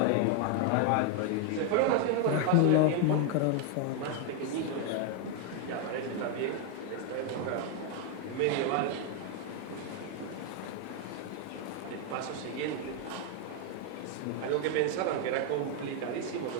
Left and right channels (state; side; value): different; both; correlation 0.01